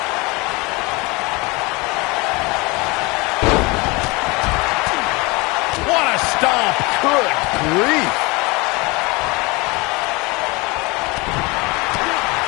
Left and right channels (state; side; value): quieter; right; 25.5 dB